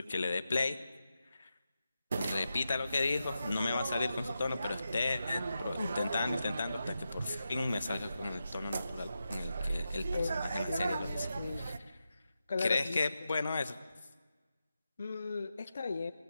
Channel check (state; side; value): inverted; both; correlation -0.89